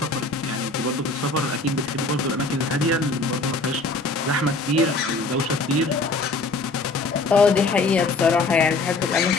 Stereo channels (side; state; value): right; quieter; 3.4 dB